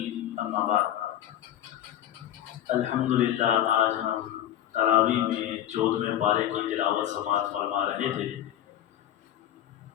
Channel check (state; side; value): quieter; right; 11.7 dB